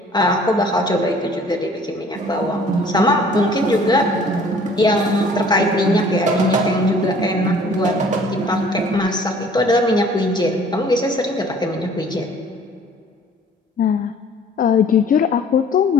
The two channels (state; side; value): normal; both; correlation 0.53